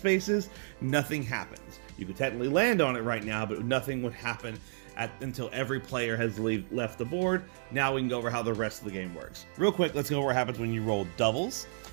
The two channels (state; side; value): silent; left; digital silence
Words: nothing happens. You could technically land on it right now, but nothing would happen until every player has left the board. Now we can go over how the rest of the game works. Real quick, let's go over what happens when you roll doubles.